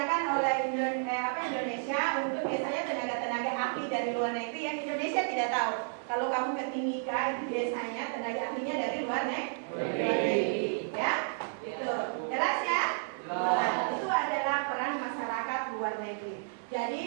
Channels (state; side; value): silent; left; 57 dB below the other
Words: oleh Indonesia untuk biasanya tenaga-tenaga ahli dari luar negeri yang Indonesia tidak tahu. Kalau kamu ke Timika itu biasanya tenaga ahlinya dari luar negeri. Ya, itu jelas ya. Nah, itu adalah peran masyarakat luar negeri.